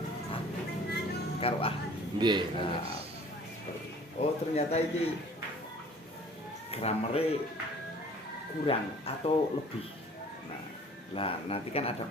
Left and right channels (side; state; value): both; normal; correlation 0.50